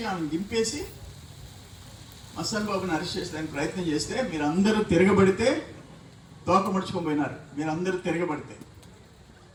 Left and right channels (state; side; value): identical; both; correlation 1.00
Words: ఆమెను దింపేసి మస్తాన్ బాబుని అరెస్ట్ చేసేదానికి ప్రయత్నం చేస్తే మీరందరూ తిరగబడితే తోక ముడుచుకొని పోయినారు. మీరందరూ తిరగబడితే